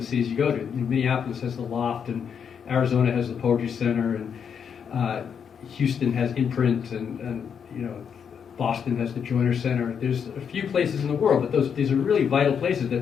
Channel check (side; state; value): right; quieter; 7.3 dB